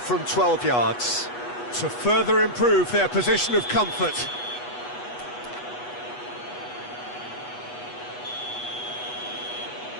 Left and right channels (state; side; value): late; right; 8.2 ms